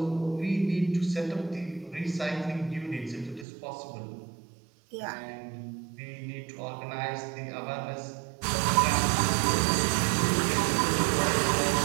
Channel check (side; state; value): left; drops out; at 3.5 s